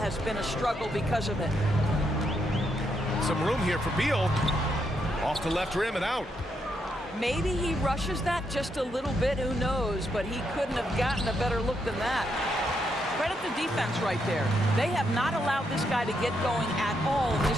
been a struggle because of it. Some room here for Beal. Off the left rim and out. Maybe he rushes that just a little bit, who knows, but he couldn't have gotten a better look than that. Credit the defense right there. They have not allowed this guy to get going at all in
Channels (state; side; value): normal; both; correlation 0.79